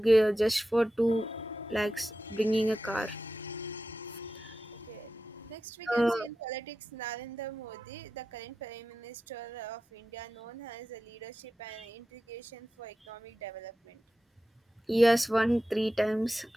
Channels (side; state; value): both; normal; correlation 0.92